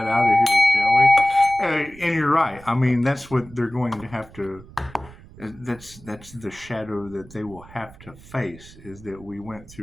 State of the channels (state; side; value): noise; right; rumble, 21 dB below the sound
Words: out of here, shall we? And you're right. I mean, that's what they're going to have to. That's the shadow that they will have to face. Is that we went